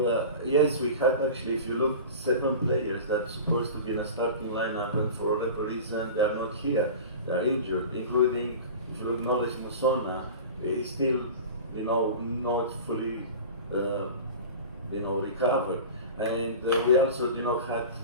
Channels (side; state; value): both; inverted; correlation -0.34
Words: yes, we had actually, if you look, 7 players that are supposed to be in a starting lineup, and for whatever reason they are not here. They are injured, including, if you look, Knowledge Musona is still, you know, not fully, you know, recovered. And we also, you know, had